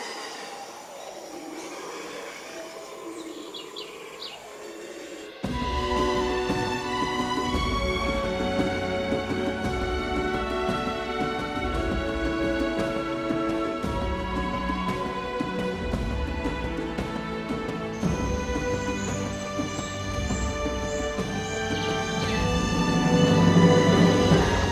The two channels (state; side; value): identical; both; correlation 1.00